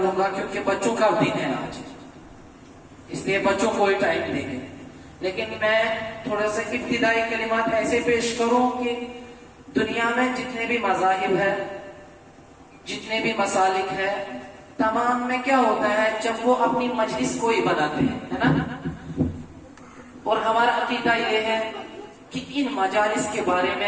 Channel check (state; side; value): identical; both; correlation 1.00